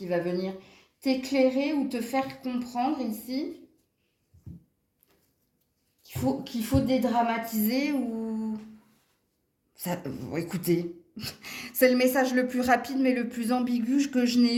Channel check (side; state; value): both; identical; correlation 1.00